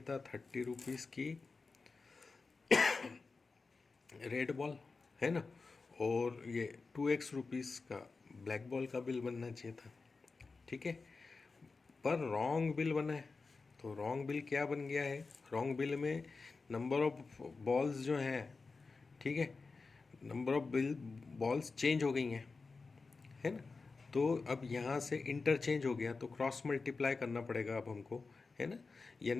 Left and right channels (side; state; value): right; quieter; 4.2 dB